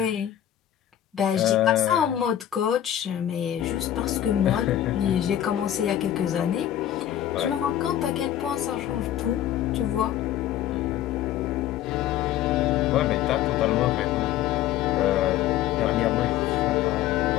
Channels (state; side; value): quieter; right; 11.7 dB